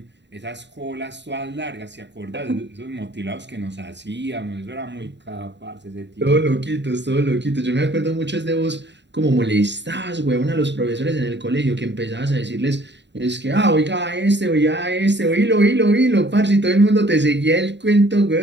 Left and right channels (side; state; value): left; late; 0.52 ms